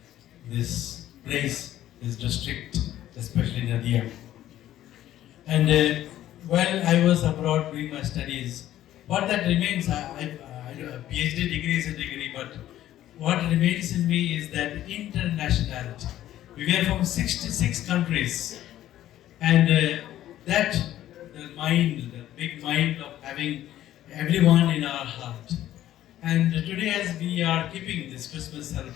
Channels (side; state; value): right; quieter; 13.0 dB